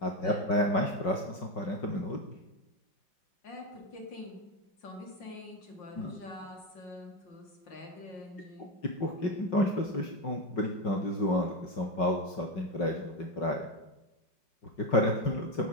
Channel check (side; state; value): right; late; 5.4 ms